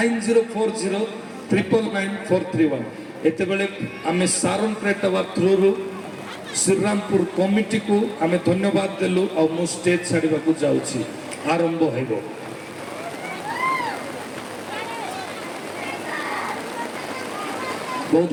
एते बेले आमे सारन प्रेटवा थ्रू श्रीरामपुर कमिटी को आमे धन्यवाद देलु और मु स्टेज छाड़ीबा को जाउछि आरंभ हेबो बहुत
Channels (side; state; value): both; identical; correlation 1.00